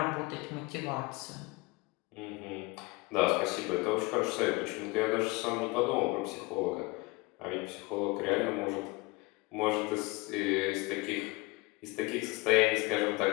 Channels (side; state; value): right; quieter; 24.7 dB